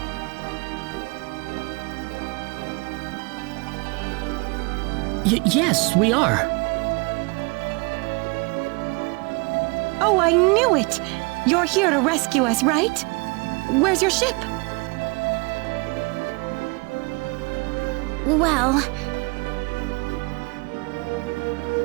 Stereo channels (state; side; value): quieter; left; 29.1 dB